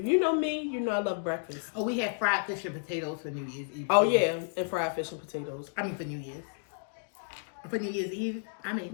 you know me, you know I love breakfast. Oh, we had fried fish and potatoes for New Year's Eve. Oh yeah, and fried fish and potatoes. I mean for New Year's. For New Year's Eve, I made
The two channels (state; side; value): silent; right; digital silence